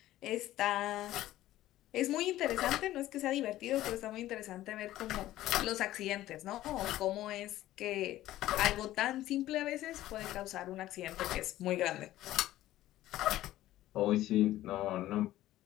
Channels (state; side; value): quieter; right; 14.7 dB